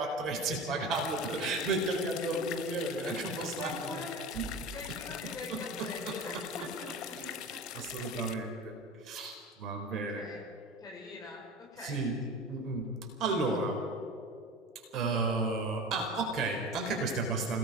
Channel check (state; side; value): normal; both; correlation 0.32